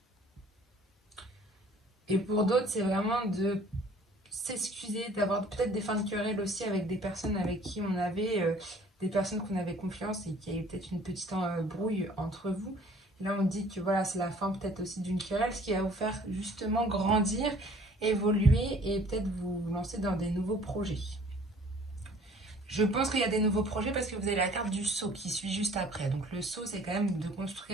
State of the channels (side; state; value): both; normal; correlation 0.54